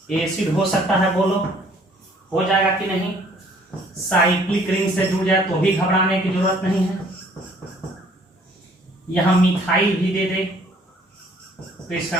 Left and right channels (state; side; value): normal; both; correlation 0.59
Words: एसिड हो सकता है, बोलो हो जाएगा कि नहीं? साइक्लिक रिंग से जुड़ जाए तो भी घबराने की जरूरत नहीं है। यहां मिथाइल भी दे दे तो इसका